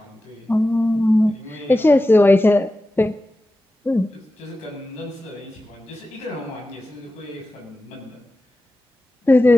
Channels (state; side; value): normal; both; correlation 0.94